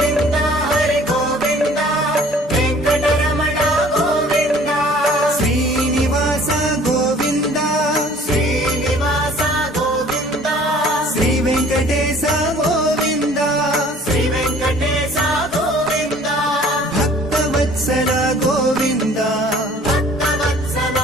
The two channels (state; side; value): normal; both; correlation 0.52